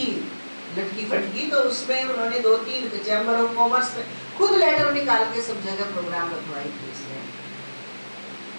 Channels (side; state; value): both; inverted; correlation -1.00